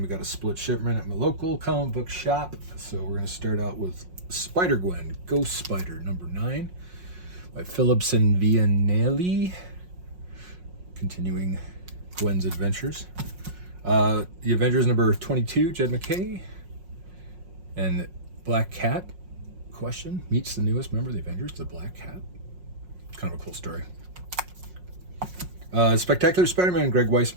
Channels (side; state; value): left; late; 5.5 ms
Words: we got a split shipment at my local comic book shop. So we're going to start out with Spider-Gwen, Ghost Spider number 9 by Phillips and Vianelli. Continuing Gwen's adventures. The Avengers number 22, Jed McKay. And Black Cat, question, meets the newest member of the Avengers, the Black Cat. Kind of a cool story. Spectacular Spider-Man, Greg